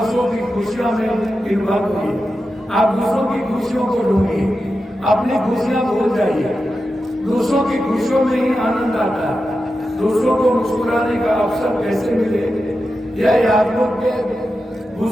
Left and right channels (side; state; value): both; normal; correlation 0.90